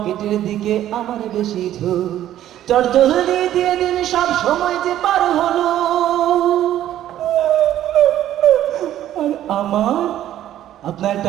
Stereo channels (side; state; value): left; quieter; 12.3 dB